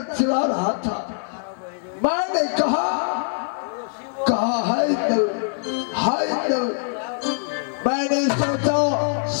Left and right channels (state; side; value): silent; right; digital silence